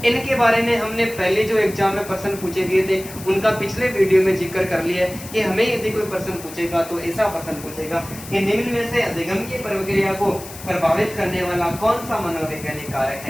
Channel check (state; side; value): noise; left; hiss, 15 dB below the sound